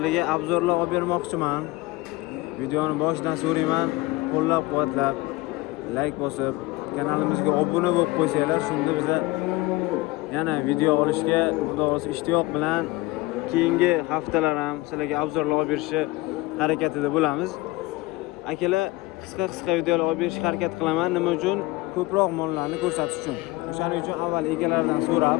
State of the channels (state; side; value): quieter; right; 20.5 dB